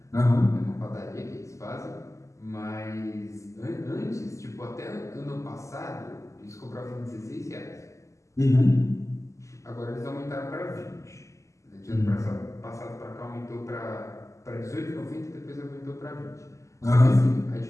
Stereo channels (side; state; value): right; late; 0.15 ms